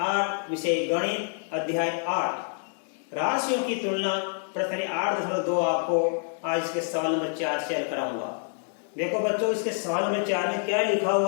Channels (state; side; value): silent; right; 60 dB below the other